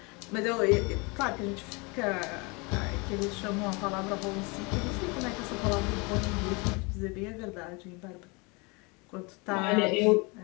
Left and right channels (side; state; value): right; quieter; 28.8 dB